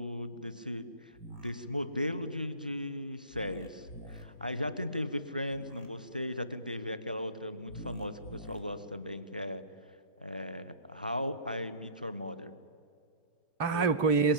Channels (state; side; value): inverted; both; correlation -0.42